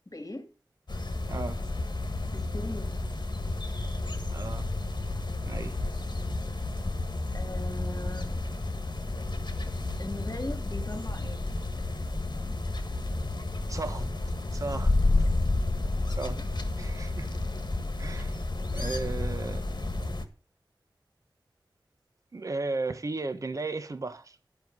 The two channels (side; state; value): both; normal; correlation 0.92